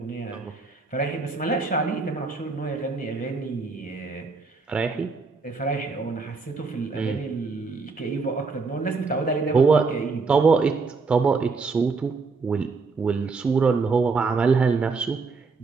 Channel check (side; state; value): left; quieter; 4.4 dB